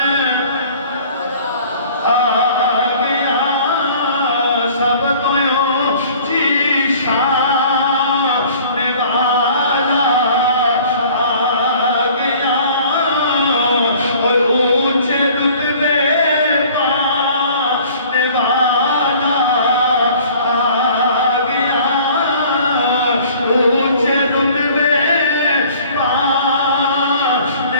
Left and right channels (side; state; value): both; inverted; correlation -0.50